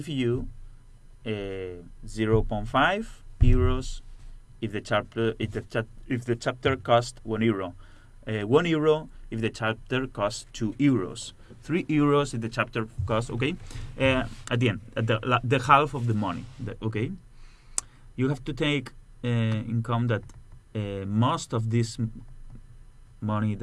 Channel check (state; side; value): identical; both; correlation 1.00